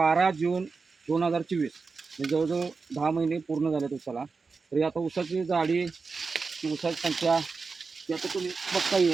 जून 2024. म्हणजे जवळजवळ 10 महिने पूर्ण झालेत ऊसाला. तरी आता ऊसाची जाडी, ऊसाची संख्या ती आता तुम्ही बघता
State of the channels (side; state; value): left; quieter; 4.6 dB